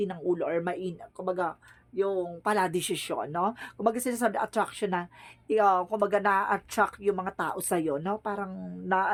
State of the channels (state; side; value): identical; both; correlation 1.00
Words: ng ulo or kumbaga, yung paladesisyon, no? Kumbaga, sinasabi, attraction na, kumbaga, na-attract yung mga tao sa'yo, no? Parang,